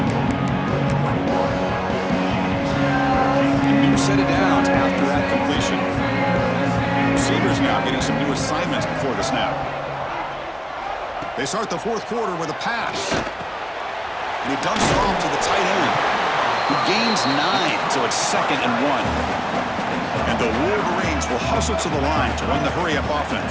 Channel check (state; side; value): identical; both; correlation 1.00